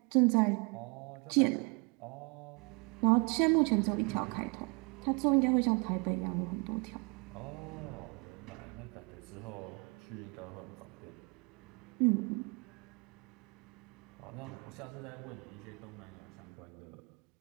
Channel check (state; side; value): quieter; left; 32.2 dB